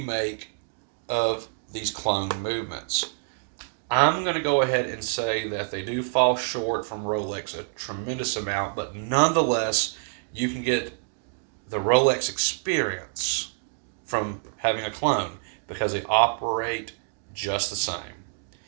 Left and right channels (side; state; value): left; silent; digital silence